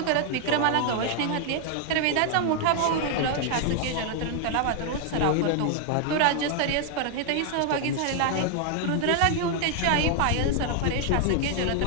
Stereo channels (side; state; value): both; different; correlation 0.00